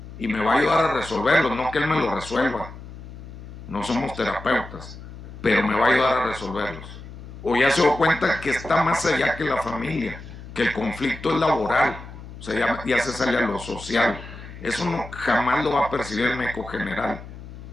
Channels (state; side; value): noise; left; hum, 14 dB below the sound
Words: Y me va a ayudar a resolverlos, no que él me lo resuelva. No somos terapeutas, pero me va a ayudar a resolverlos. O ya se dio cuenta que está más allá que la familia, que el conflicto es laboral, o sea, ya se sale a lo social. Eso no, jamás lo va a percibir el médico general.